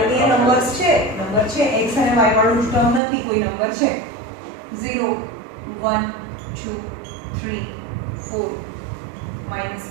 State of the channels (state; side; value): drops out; left; at 3.0 s